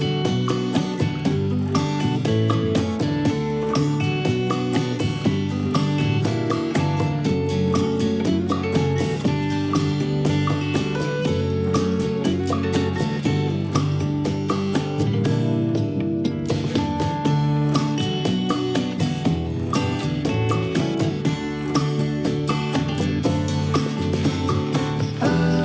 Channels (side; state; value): both; identical; correlation 1.00